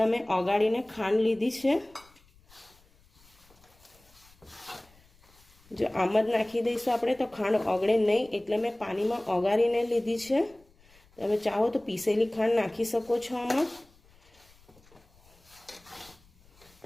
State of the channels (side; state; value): left; noise; rumble, 29 dB below the sound